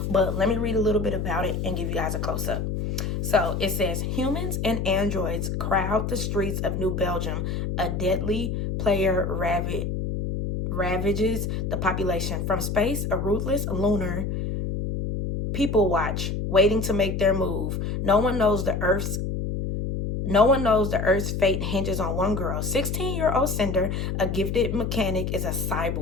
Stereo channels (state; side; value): noise; left; hum, 2 dB below the sound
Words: But let me read a little bit about it and give you guys a close-up. So it says, humans and androids crowd the streets of New Belgium. A deadly player ravages the population. From space, a ruthless lunar people watch, waiting to make their move. No one knows the Earth's fate hinges on one girl. 16-year-old Cinder, a gifted mechanic, is a